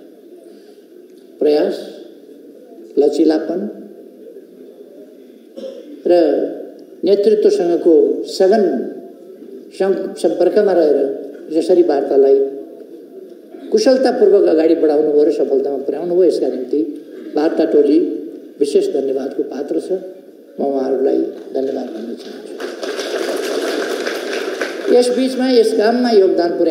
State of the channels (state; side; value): identical; both; correlation 1.00